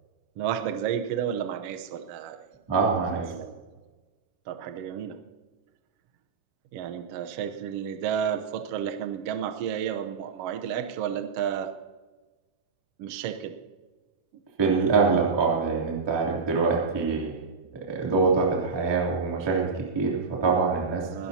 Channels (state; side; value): quieter; left; 5.0 dB